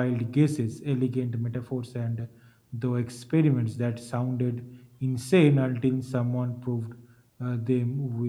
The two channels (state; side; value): identical; both; correlation 1.00